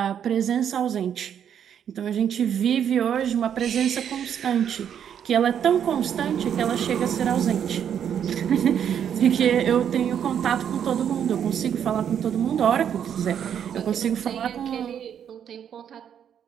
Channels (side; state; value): left; quieter; 8.8 dB